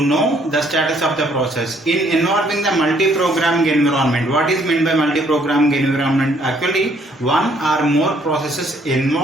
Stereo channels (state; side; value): normal; both; correlation 0.65